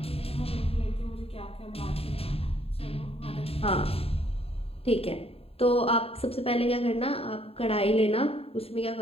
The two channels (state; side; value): late; right; 0.28 ms